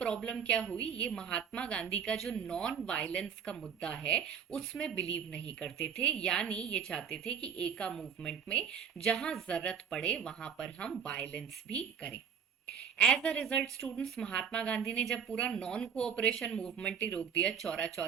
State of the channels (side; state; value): left; quieter; 7.3 dB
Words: क्या हुई, ये महात्मा गांधी का जो नॉन वायलेंस का मुद्दा है उसमें बिलीव नहीं करते थे। यानी ये चाहते थे कि एका मूवमेंट में जहां जरूरत पड़े वहां पर हम वायलेंस भी करें। As a result students, Mahatma Gandhi ने जब पूरा नॉन कोऑपरेशन मूवमेंट ही रोक दिया चौरा